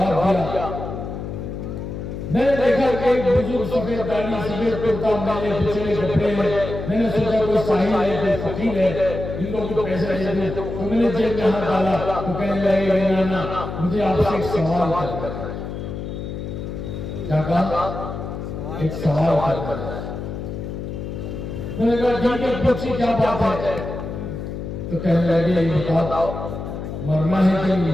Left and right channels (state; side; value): noise; left; hum, 7 dB below the sound